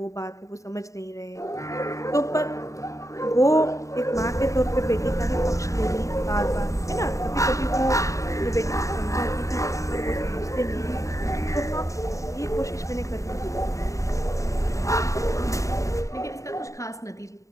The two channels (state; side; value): late; right; 0.16 ms